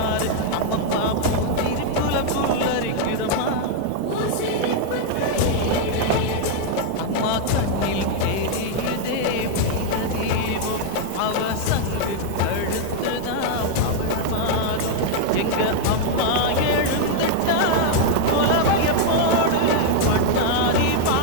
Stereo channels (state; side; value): different; both; correlation -0.01